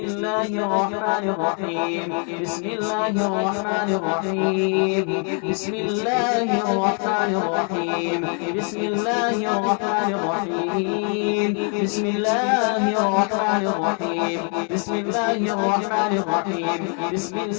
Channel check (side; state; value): right; quieter; 38.8 dB